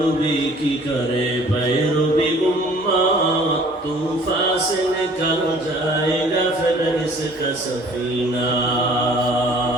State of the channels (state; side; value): normal; both; correlation 0.53